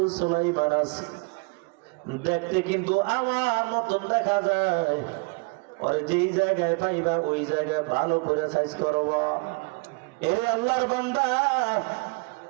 সুলাইমান আছে, দেখতে কিন্তু আমার মতন দেখা যায়, ওরে যেই জায়গায় পাইবা ওই জায়গায় ভালো করে সাইজ করবা। এরে আল্লাহর বান্দা,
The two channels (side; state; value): left; quieter; 30.7 dB